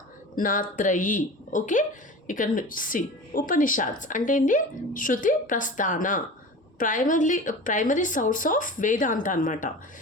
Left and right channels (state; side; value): normal; both; correlation 0.34